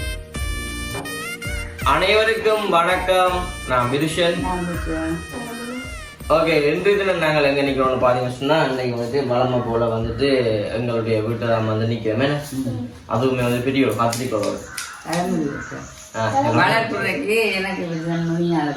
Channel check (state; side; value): identical; both; correlation 1.00